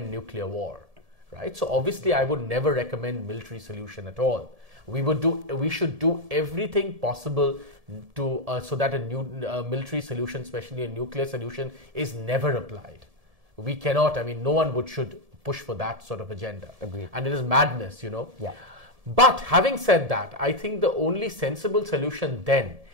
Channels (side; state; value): left; late; 1.7 ms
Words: nuclear war. Right? So obviously I would never recommend military solution at all. We should do everything possible to so that a new military solution, especially a nuclear solution, is never applied. We cannot, no one should push for that sort of agenda. Agreed. And it is madness, Yeah. But having said that, I think the only sensible solution then